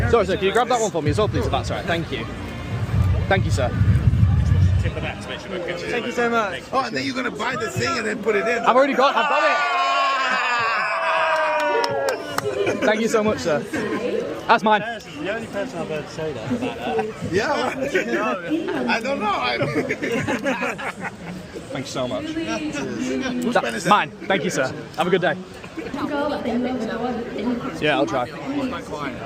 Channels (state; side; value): identical; both; correlation 1.00